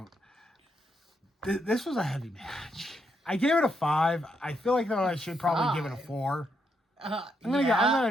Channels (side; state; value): both; normal; correlation 0.79